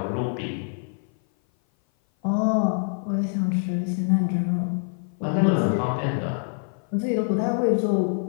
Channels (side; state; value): right; silent; 57 dB below the other